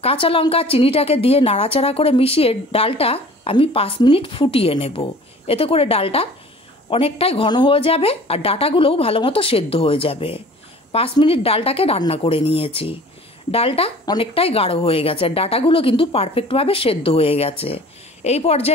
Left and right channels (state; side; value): normal; both; correlation 0.46